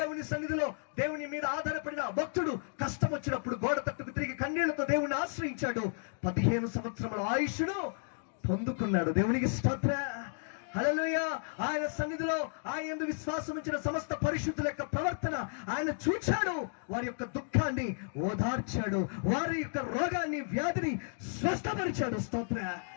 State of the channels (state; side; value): silent; right; digital silence